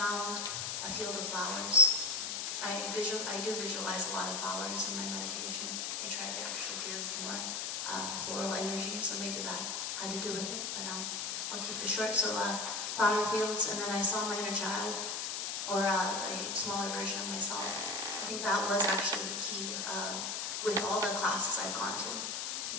a field of flowers. I do visualize a lot of flowers in my meditation. I try to actually give more floral energy, so maybe that had to do with it, but I'll keep it short. So flower fields, and then I saw my inner child, or a smaller version of myself. I think that was actually the key with all the classes I've gone to.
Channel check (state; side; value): noise; left; hiss, 2 dB below the sound